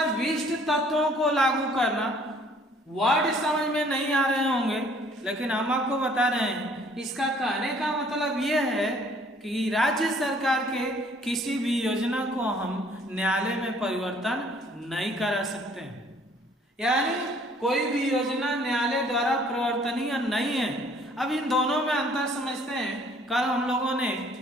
तत्वों को लागू करना। वर्ड समझ में नहीं आ रहे होंगे, लेकिन हम आपको बता रहे हैं। इसका कहने का मतलब यह है कि राज्य सरकार के किसी भी योजना को हम न्यायालय में परिवर्तन नहीं करा सकते हैं, यानी कोई भी योजना न्यायालय द्वारा परिवर्तनीय नहीं है। अब इन दोनों में अंतर समझते हैं। कल हम लोगों ने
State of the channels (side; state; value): both; normal; correlation 0.59